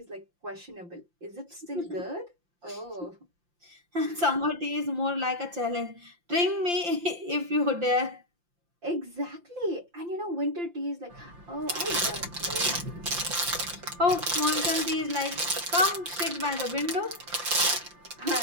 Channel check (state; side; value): late; left; 5.8 ms